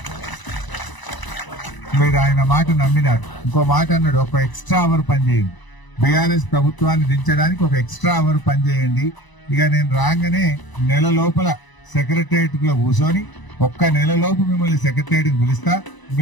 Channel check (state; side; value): late; right; 1.0 ms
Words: మీరు ఆయన మాట నమ్మినారు. ఇంకో మాట అన్నాడు, ఒక ఎక్స్ట్రా అవర్ పనిచేయండి, బీఆర్ఎస్ ప్రభుత్వాన్ని దించడానికి ఒక ఎక్స్ట్రా అవర్ పనిచేయండి. ఇక నేను రాగానే నెల లోపల సెక్రటరియట్ లో కూర్చొని ఒక్క నెల లోపు మిమ్మల్ని సెక్రటరియట్ పిలుస్తా,